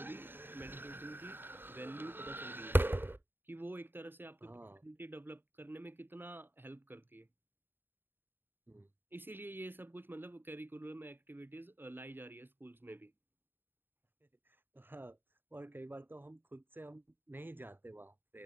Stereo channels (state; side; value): late; left; 0.098 ms